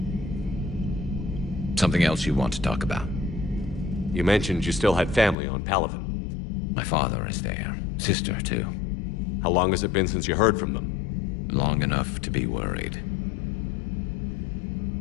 Something else you want to talk about? You mentioned you still had family on Palaven. My father is there. Sister, too. How long has it been since you heard from them? Long enough to be worried.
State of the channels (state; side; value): drops out; right; at 5.4 s